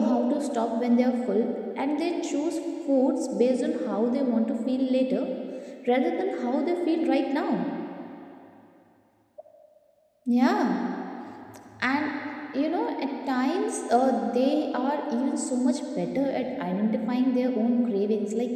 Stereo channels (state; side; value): identical; both; correlation 1.00